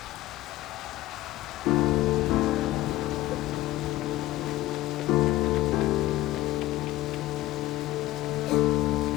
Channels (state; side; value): quieter; right; 16.2 dB